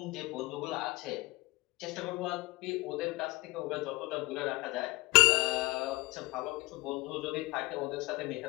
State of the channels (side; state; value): right; quieter; 22.4 dB